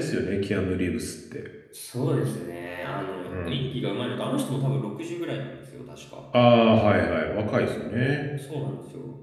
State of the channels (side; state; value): both; identical; correlation 1.00